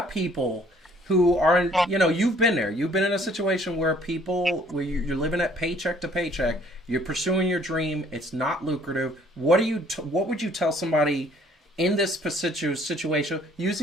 people who are, you know, you've been there. You've been in a situation where you're living at paycheck to paycheck. You're pursuing your dream. It's not lucrative. What would you tell somebody in this situation,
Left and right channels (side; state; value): both; normal; correlation 0.59